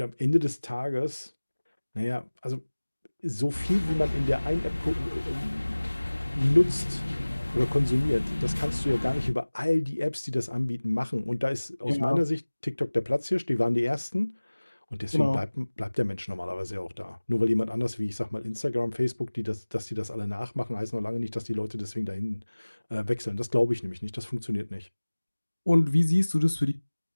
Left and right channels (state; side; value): inverted; both; correlation -1.00